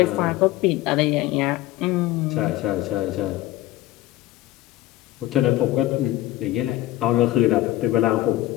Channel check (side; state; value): right; quieter; 16.2 dB